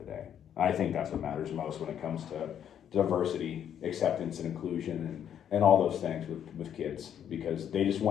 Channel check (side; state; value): right; quieter; 9.4 dB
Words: day. I think that's what matters most when it comes to diversity, acceptance, and inclusion, and all those things with kids, because they just